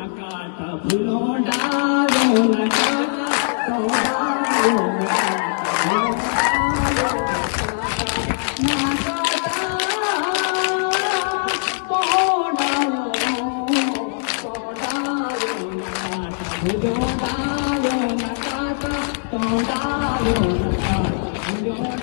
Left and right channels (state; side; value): silent; right; 65 dB below the other